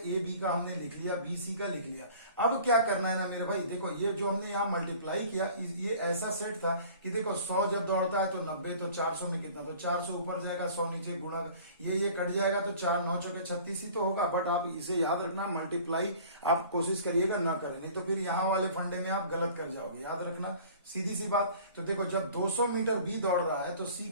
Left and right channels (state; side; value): inverted; both; correlation -0.47